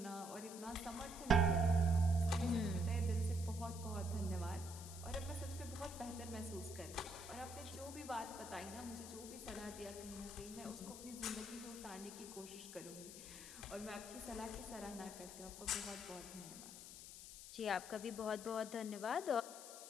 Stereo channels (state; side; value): noise; left; hiss, 12 dB below the sound